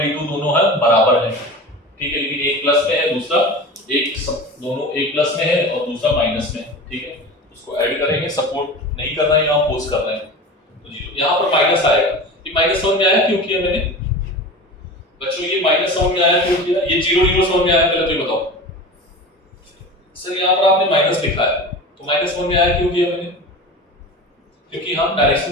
E2 दोनों है बराबर है, ठीक है, लेकिन एक प्लस में है दूसरा दोनों एक प्लस में है और दूसरा माइनस में है, ठीक है, उसको ऐड करेंगे, सपोर्ट नहीं कर रहे हैं यहाँ पोज कर रहे हैं तो 0 यहाँ पर माइनस आएगा। ये माइनस समझ में आया क्यों किया मैंने बच्चों, ये माइनस समझ में आया क्यों किया, ये 0 0 समझ में आया पहले तो ये बताओ सर। यहाँ पर आपने माइनस लिखा है तो माइनस समझ में आया क्यों किया मैंने, क्योंकि हम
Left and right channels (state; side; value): normal; both; correlation 0.32